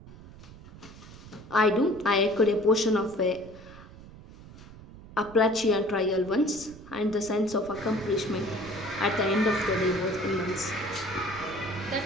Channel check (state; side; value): noise; right; rumble, 18 dB below the sound